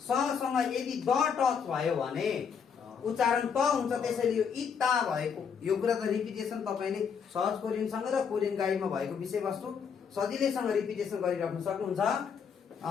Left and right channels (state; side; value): quieter; right; 6.7 dB